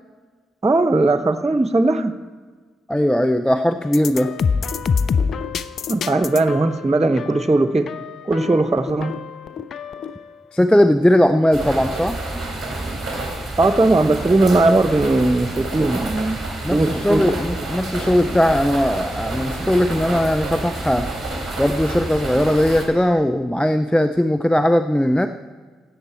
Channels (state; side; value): normal; both; correlation 0.91